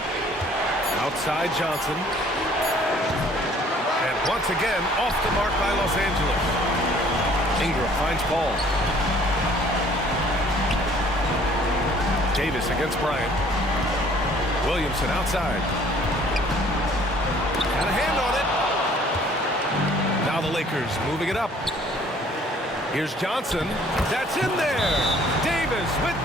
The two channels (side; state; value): both; normal; correlation 0.56